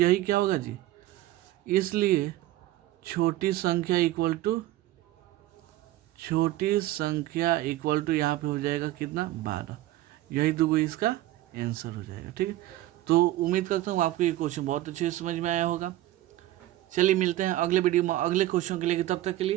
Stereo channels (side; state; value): left; quieter; 15.5 dB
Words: क्या होगा जी, इसलिए छोटी संख्या इक्वल टू यहाँ पे हो जाएगा कितना 12। यही दो इसका आंसर हो जाएगा। ठीक है, तो उम्मीद करता हूँ आपको ये क्वेश्चन बहुत अच्छे से समझ में आया होगा। चलिए मिलते हैं अगले वीडियो में अगले क्वेश्चन के लिए, तब तक के